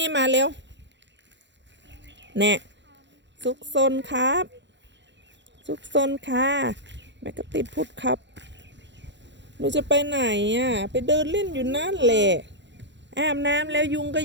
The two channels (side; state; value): left; late; 0.52 ms